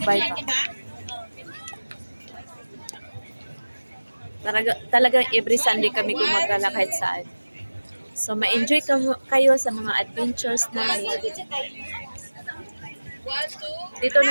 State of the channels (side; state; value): both; inverted; correlation -1.00